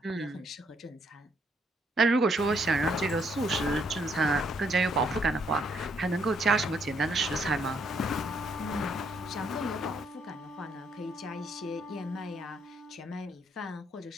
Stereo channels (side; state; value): both; normal; correlation 0.71